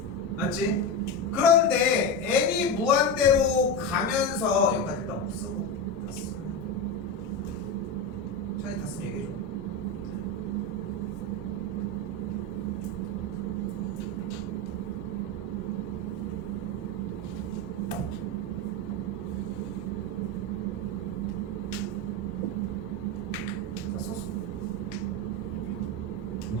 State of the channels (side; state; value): both; normal; correlation 0.17